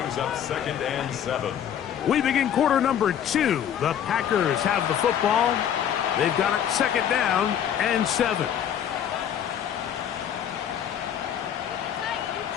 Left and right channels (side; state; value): right; quieter; 9.5 dB